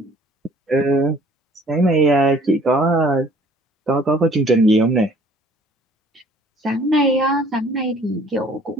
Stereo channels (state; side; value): normal; both; correlation 0.55